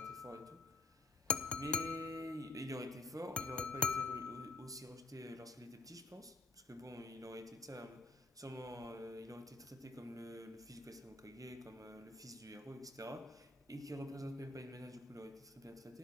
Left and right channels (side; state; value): right; quieter; 3.2 dB